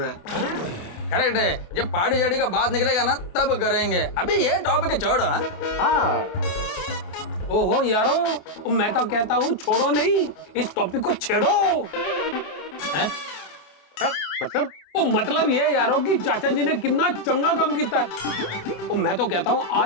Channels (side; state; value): right; late; 28 ms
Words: है। करेक्ट है, जब पार्टी शार्टी का बात निकलेगा ना तब करेंगे, अभी ये टॉपिक छोड़ो। हाँ ओहो यारो, मैं तो कहता हूँ छोड़ो नहीं, इस टॉपिक को छेड़ो। हाँ, मतलब वो मतलब ये यारो कि चाचा जी ने कितना चंगा काम किया है। और मैं तो कहता हूँ